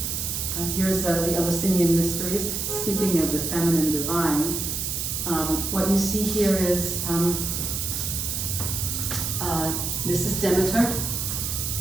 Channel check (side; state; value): right; noise; hiss, 2 dB below the sound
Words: here's the Eleusinian Mysteries, speaking of the feminine divine, what you see here is, this is Demeter,